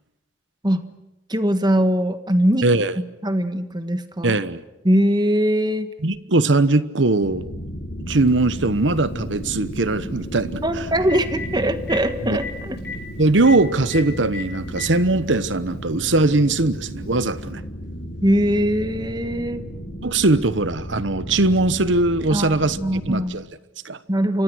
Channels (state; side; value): normal; both; correlation 0.50